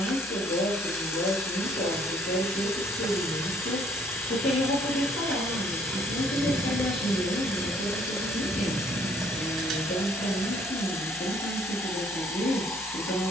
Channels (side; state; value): both; normal; correlation 0.62